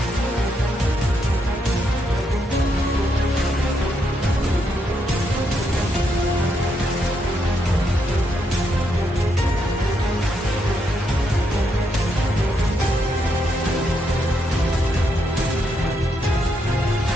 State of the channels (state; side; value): normal; both; correlation 0.79